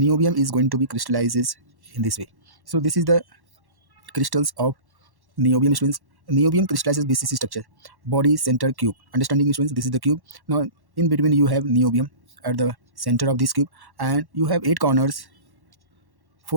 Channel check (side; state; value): left; late; 1.1 ms